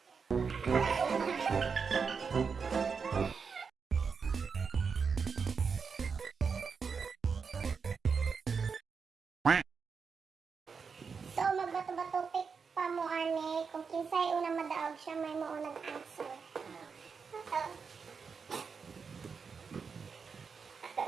So, magbato-bato pick pa mo, ani. Kung kinsay unang madaog siya, may mo unang answer.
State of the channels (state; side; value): quieter; left; 5.6 dB